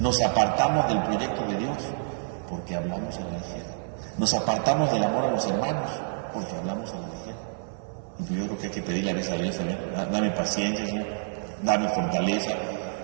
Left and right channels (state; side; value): silent; left; 56 dB below the other